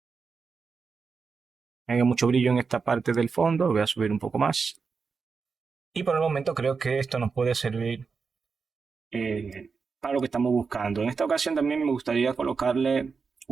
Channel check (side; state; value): left; quieter; 5.1 dB